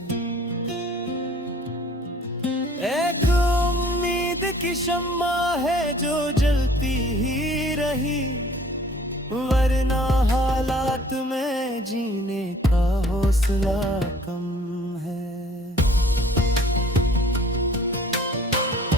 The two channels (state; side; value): normal; both; correlation 0.53